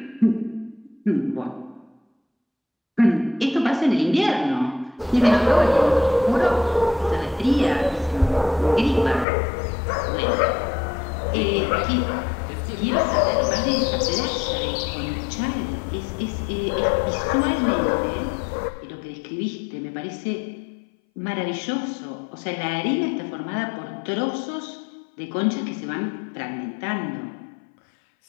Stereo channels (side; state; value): right; drops out; at 9.2 s